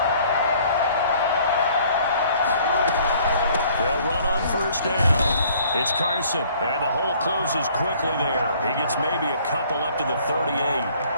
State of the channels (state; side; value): inverted; both; correlation -0.58